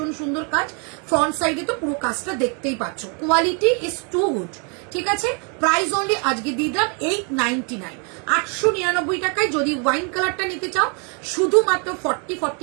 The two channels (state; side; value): quieter; left; 36.7 dB